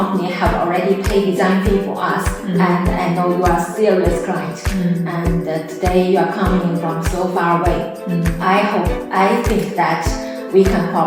have already paid design fee for us, and I know you are a serious client. And today you are coming from so far away. I think that we can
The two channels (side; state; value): both; identical; correlation 1.00